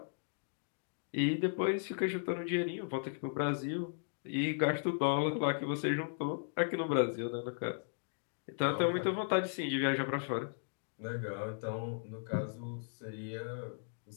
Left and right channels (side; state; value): right; silent; digital silence